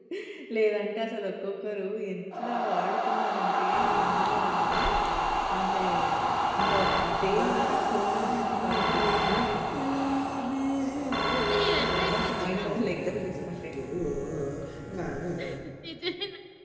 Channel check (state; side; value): identical; both; correlation 1.00